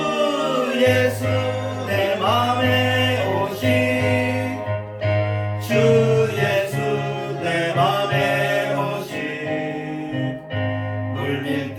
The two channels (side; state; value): both; identical; correlation 1.00